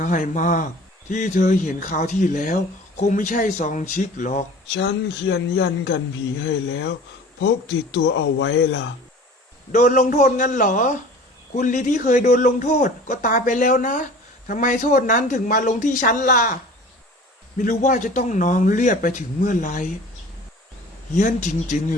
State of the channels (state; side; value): normal; both; correlation 0.43